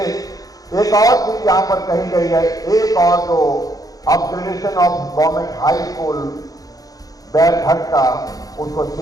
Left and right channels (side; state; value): right; late; 0.18 ms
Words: एक और चीज यहां पर कही गई है, एक और जो upgradation of government high school Bairghat का, उसको